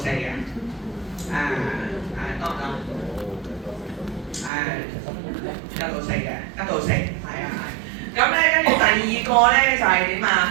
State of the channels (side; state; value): left; drops out; at 4.5 s